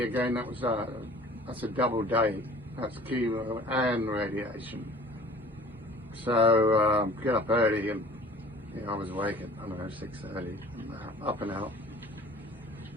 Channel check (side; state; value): both; normal; correlation 0.47